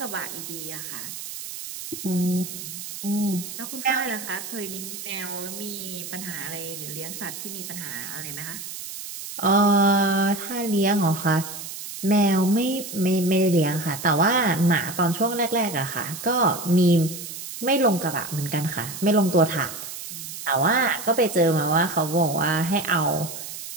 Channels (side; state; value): right; noise; hiss, 9 dB below the sound